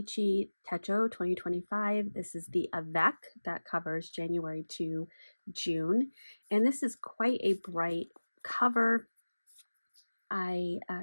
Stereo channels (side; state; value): both; inverted; correlation -1.00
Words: Techo 2025. This is the Avec that covers January to June. And this is quite a bright cover. I